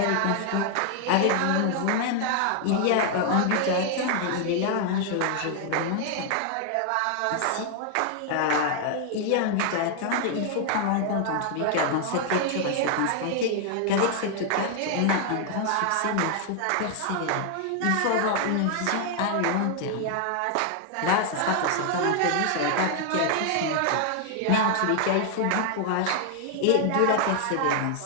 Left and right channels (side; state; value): both; different; correlation 0.00